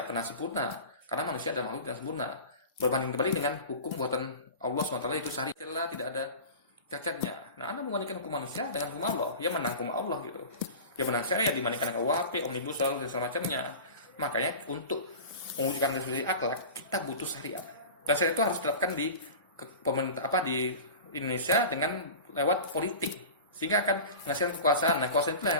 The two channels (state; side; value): inverted; both; correlation -0.34